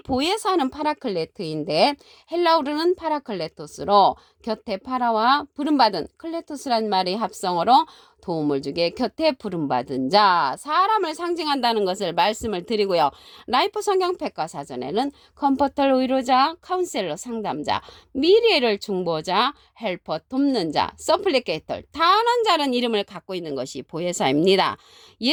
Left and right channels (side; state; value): both; identical; correlation 1.00